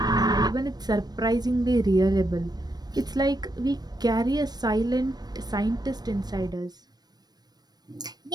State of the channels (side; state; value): left; late; 0.19 ms